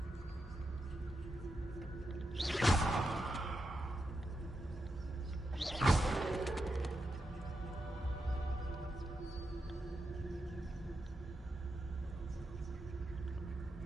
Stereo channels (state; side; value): normal; both; correlation 0.86